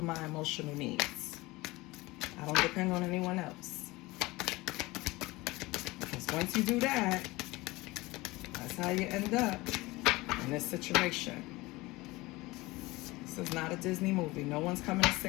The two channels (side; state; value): right; quieter; 21.1 dB